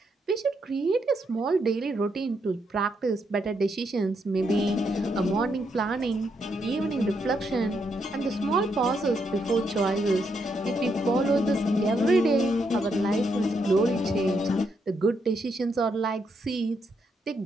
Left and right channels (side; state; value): both; normal; correlation 0.78